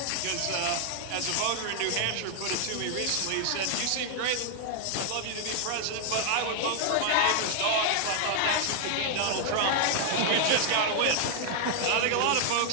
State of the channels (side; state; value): both; different; correlation 0.00